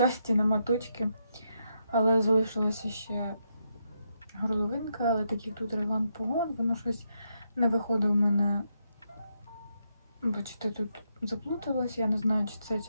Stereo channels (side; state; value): both; inverted; correlation -0.80